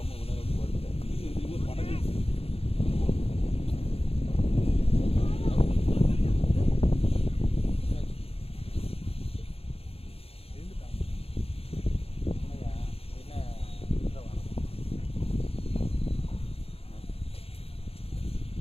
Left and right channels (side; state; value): right; late; 0.28 ms